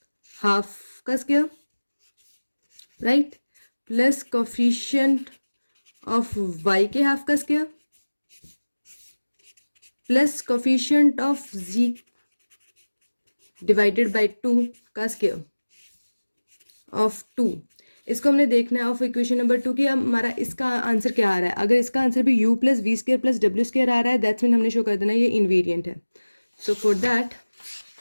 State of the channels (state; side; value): inverted; both; correlation -1.00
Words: हाफ का square, right, plus coefficient of Y के हाफ का square, plus coefficient of Z divided by 2 का स्क्वायर ऑफ 2। इसको हमने देखना है ऑफ इक्वेशन नंबर 2 की हमारा इसका आंसर क्या आ रहा है। अगर इसका आंसर भी u plus we square plus W square आ रहा है, दैट्स मीन हमने शो कर देना ये इनवेरिएंट है। So for that